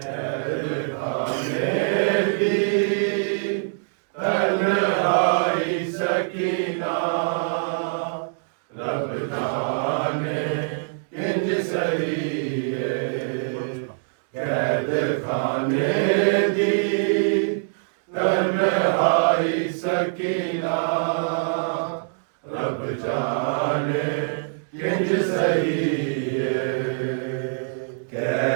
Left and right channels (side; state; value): left; silent; digital silence